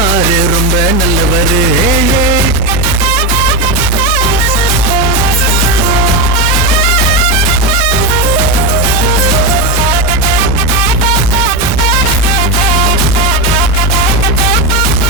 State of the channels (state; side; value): normal; both; correlation 0.12